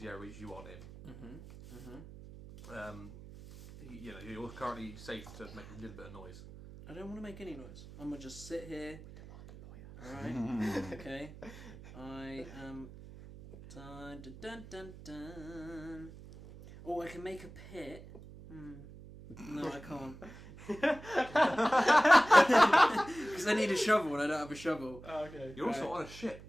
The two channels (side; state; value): right; noise; hum, 16 dB below the sound